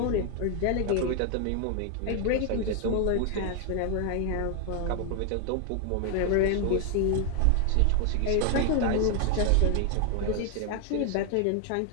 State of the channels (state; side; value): different; both; correlation 0.00